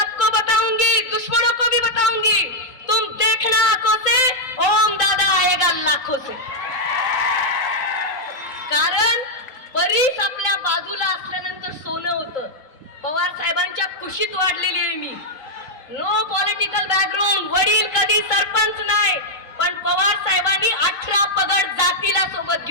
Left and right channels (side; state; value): right; late; 3.8 ms